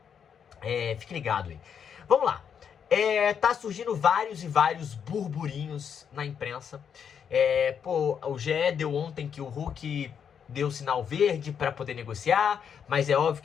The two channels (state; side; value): quieter; right; 7.6 dB